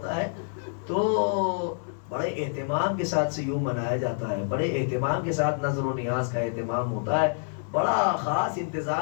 ہے تو بڑے اہتمام کے ساتھ سیوم منایا جاتا ہے، بڑے اہتمام کے ساتھ نظر و نیاز کا اہتمام ہوتا ہے، بڑا خاص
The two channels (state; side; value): silent; right; digital silence